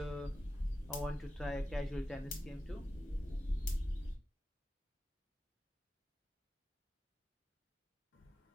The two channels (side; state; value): both; normal; correlation 0.93